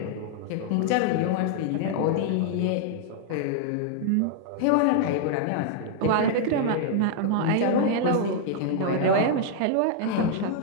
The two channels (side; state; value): both; different; correlation 0.00